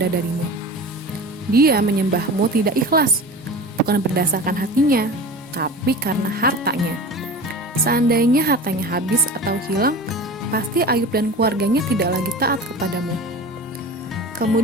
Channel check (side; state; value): both; normal; correlation 0.34